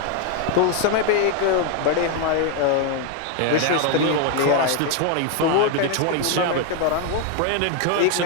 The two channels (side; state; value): both; different; correlation 0.01